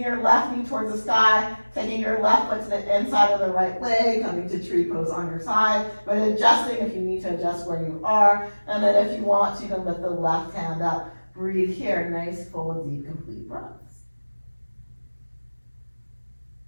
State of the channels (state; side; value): inverted; both; correlation -1.00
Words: your left knee towards the sky, taking your left foot to the inside of the right leg, coming to tree pose on your side, but adjusting if you need to adjust where you are. And then if you want to, you can lift the left hand up. Breathe here, nice, full, deep, complete breaths.